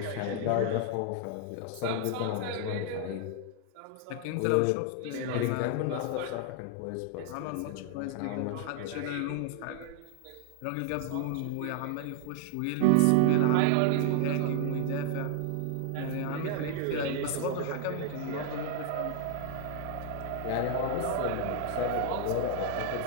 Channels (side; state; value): both; different; correlation 0.00